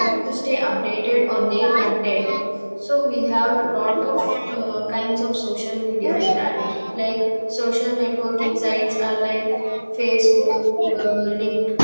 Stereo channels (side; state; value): both; inverted; correlation -1.00